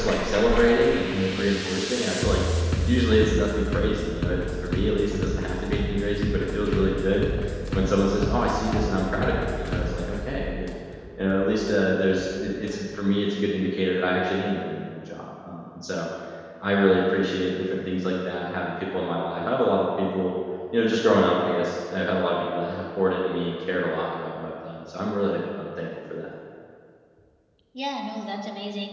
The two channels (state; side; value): identical; both; correlation 1.00